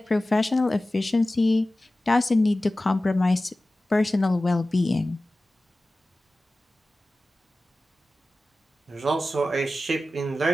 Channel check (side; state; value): both; normal; correlation 0.96